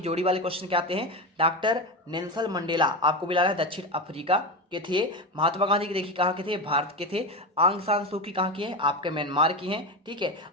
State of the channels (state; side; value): normal; both; correlation 0.19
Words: वाले क्वेश्चन क्या आते हैं, डॉक्टर नेल्सन मंडेला आपको मिला है दक्षिण अफ्रीका के थे। महात्मा गांधी के देखिए कहाँ के थे, भारत के थे। आंग सान सू की कहाँ की है, आपके म्यांमार की हैं। ठीक है